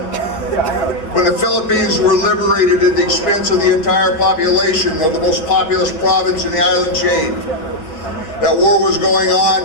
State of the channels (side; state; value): right; late; 6.4 ms